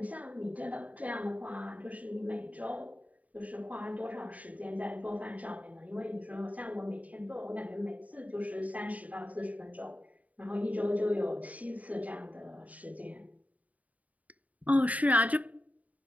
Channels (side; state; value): left; late; 0.071 ms